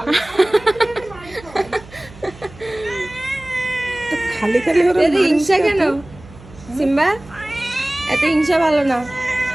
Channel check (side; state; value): right; noise; hum, 20 dB below the sound